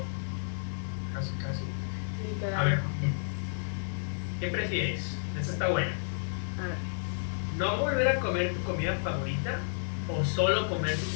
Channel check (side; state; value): right; silent; digital silence